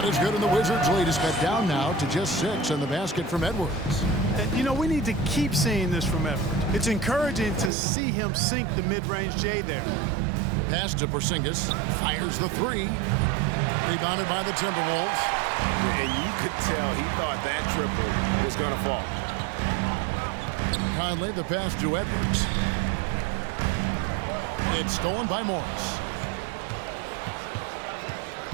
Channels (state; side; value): drops out; left; at 7.7 s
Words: is good, and the Wizards' lead is cut down now to just 6 in the basket from Edwards. And, you know, we need to keep seeing this from Edwards. It's encouraging to see him sink the mid-range J there. Pass to Porzingis. Fires the 3. Rebounded by the Timberwolves. And you could tell he thought that triple was going to fall. Conley the pass to Edwards. It's stolen by Morris.